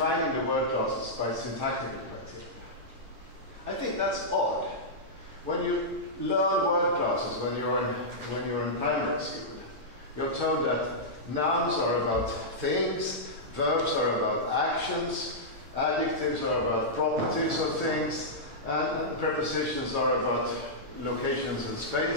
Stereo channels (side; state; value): left; late; 9.1 ms